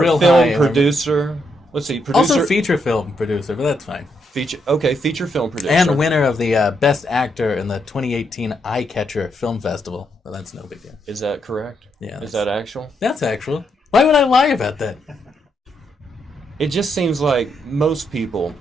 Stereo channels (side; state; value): both; normal; correlation 0.78